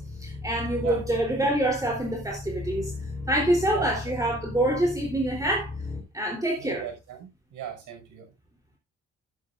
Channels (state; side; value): normal; both; correlation 0.55